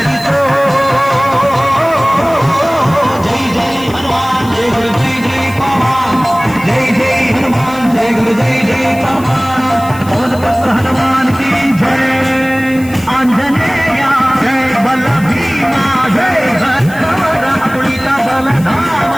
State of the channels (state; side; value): noise; left; hiss, 19 dB below the sound